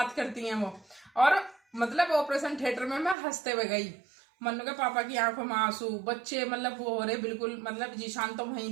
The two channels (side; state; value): left; drops out; at 3.2 s